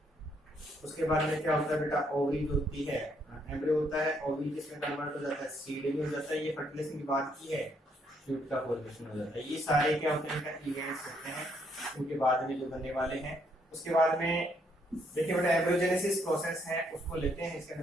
उसके बाद में क्या होता है बेटा ओवरी होती है एम्ब्रियो होता है, ओवी जिसमें कन्वर्ट हो जाता है, सीड में हो जाता है, ये फर्टिलाइजेशन की बात की है, फ्रूट का फॉर्मेशन हो जाता है। ये सारे क्या होते हैं, इवेंट्स होते हैं उनके बाद में जो बनने वाले हैं। उसके बाद में देखिए बेटा एम्ब्रियोजेनेसिस प्रोसेस है, उसको लेते हैं। इसके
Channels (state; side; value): normal; both; correlation 0.72